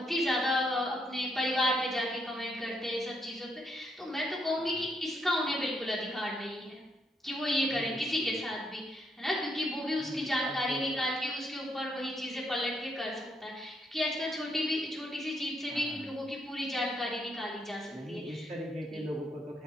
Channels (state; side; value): normal; both; correlation 0.76